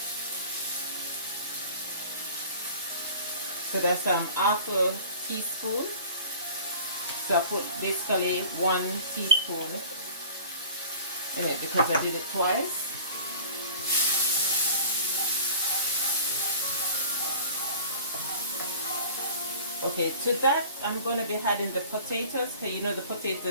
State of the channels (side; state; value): both; inverted; correlation -0.43